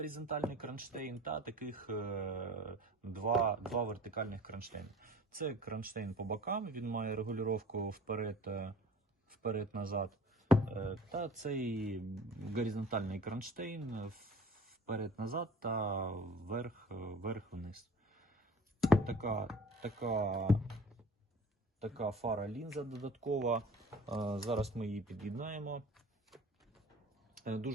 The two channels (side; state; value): both; normal; correlation 0.45